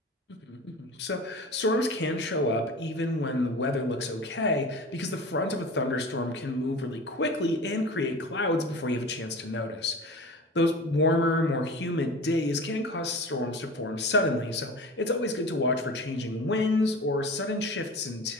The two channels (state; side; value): normal; both; correlation 0.35